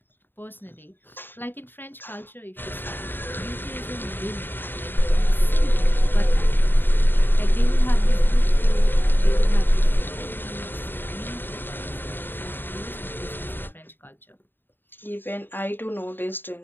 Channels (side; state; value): right; late; 0.096 ms